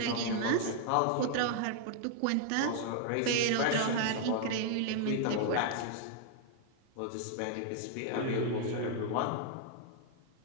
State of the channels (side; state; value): both; different; correlation 0.00